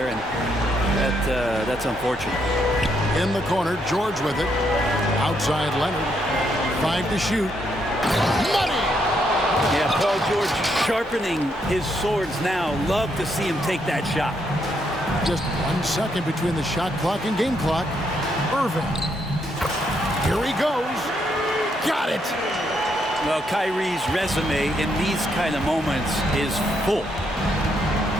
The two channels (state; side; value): normal; both; correlation 0.76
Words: and that's unfortunate. In the corner, George with it. Outside Leonard. 5 to shoot. Money! Yeah, Paul George sharpening his swords now. Love to see him take that shot. Just 1 second between the shot clock and game clock. Irving. Here he goes. Got it! Well, Kyrie's resume in these kind of moments is full.